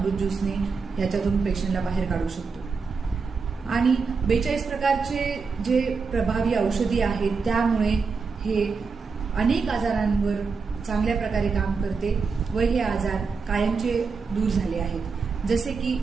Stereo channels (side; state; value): left; quieter; 4.9 dB